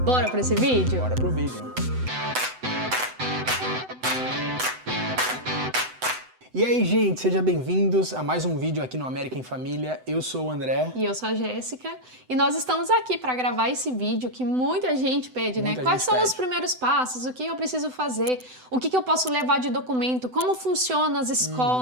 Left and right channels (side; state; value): left; late; 7.9 ms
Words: Bora para esse vídeo? Bora pro vídeo. E aí, gente, sejam bem-vindos a mais um vídeo aqui no América em Família. Eu sou o André. E eu sou a Jéssica. E nós estamos aqui para gravar esse vídeo que muita gente pede, né? Quais são os primeiros passos? O que eu preciso fazer? O que eu posso levar de documento? Como funcionam as